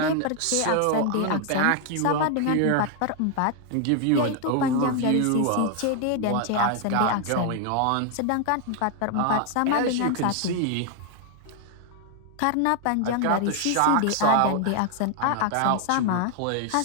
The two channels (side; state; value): both; different; correlation 0.00